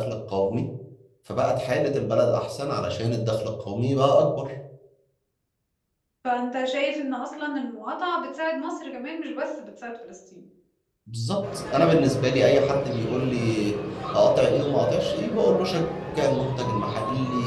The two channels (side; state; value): both; identical; correlation 1.00